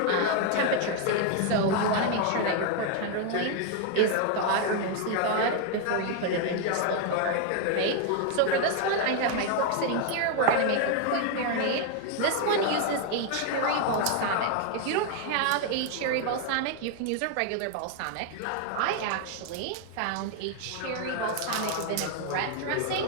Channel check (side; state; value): both; different; correlation 0.00